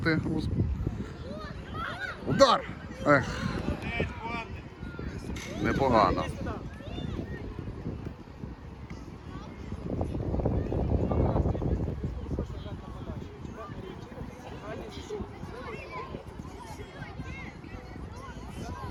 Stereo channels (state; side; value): identical; both; correlation 1.00